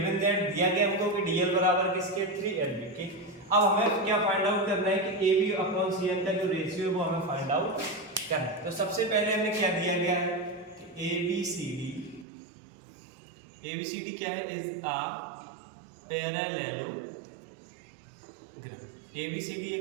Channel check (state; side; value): drops out; left; at 12.2 s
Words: दैट दिया गया हमको कि DL बराबर किसके 3LB के। अब हमें क्या फाइंड आउट करना है कि AB अपॉन CM का जो रेशियो है वो हमें फाइंड आउट करना है। तो सबसे पहले हमें क्या दिया गया है कि ABCD क्या है इज अ पैरेललोग्राम। ABCD